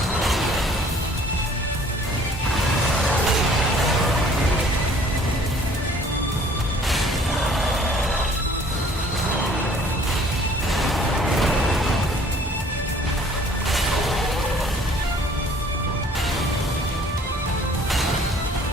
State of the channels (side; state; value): both; normal; correlation 0.54